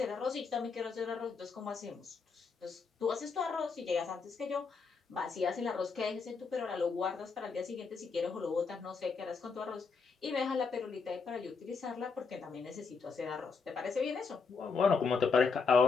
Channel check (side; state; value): right; quieter; 5.0 dB